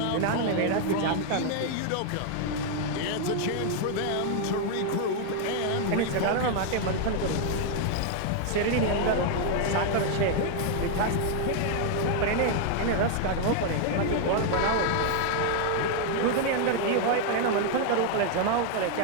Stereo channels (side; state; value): both; different; correlation 0.00